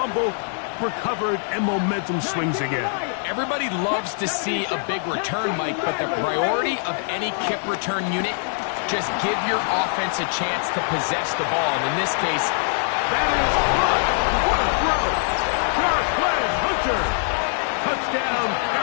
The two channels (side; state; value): right; silent; 63 dB below the other